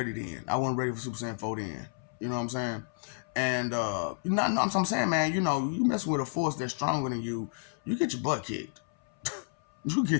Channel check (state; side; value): silent; right; 57 dB below the other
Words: then. I wasn't ready for Super Saiyan 4 then. You know what I'm saying? And, I'm saying, man, you messing with a force that's stronger than you get your butt kicked. You